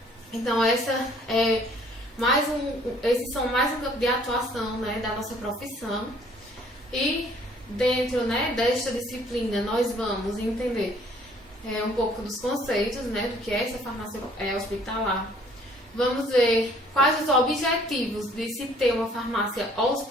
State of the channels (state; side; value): normal; both; correlation 0.58